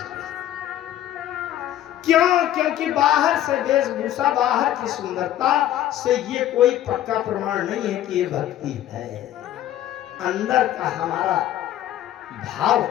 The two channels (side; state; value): right; quieter; 12.4 dB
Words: क्यों? क्योंकि बाहर से वेशभूषा, बाहर की सुंदरता से ये कोई पक्का प्रमाण नहीं है कि ये भक्ति है। अंदर का हमारा भाव